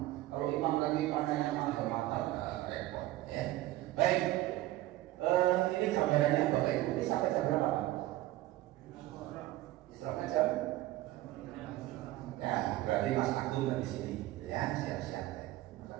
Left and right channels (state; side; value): quieter; left; 16.3 dB